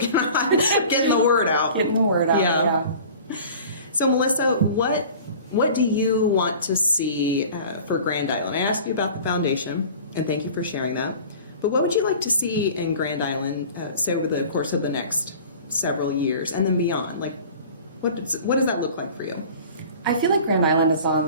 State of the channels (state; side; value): inverted; both; correlation -0.43